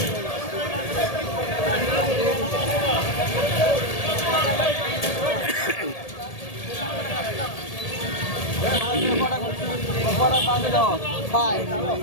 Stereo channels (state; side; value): late; right; 1.8 ms